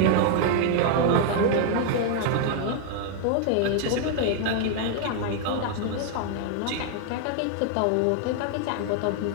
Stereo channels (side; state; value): both; different; correlation 0.00